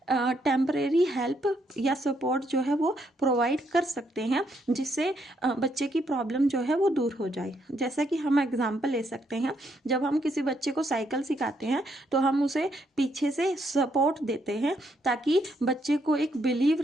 टेम्परेरी हेल्प या सपोर्ट जो है वो प्रोवाइड कर सकते हैं, जिससे बच्चे की प्रॉब्लम जो है वो दूर हो जाए। जैसा कि हम एग्जांपल ले सकते हैं, जब हम किसी बच्चे को साइकिल सिखाते हैं तो हम उसे पीछे से सपोर्ट देते हैं ताकि बच्चे को एक बिलीव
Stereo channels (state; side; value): normal; both; correlation 0.75